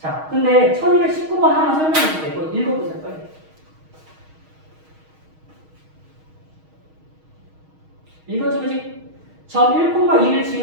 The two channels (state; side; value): late; left; 6.4 ms